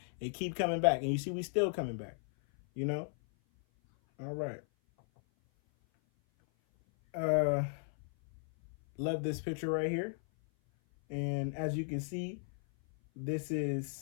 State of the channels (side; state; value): right; silent; 54 dB below the other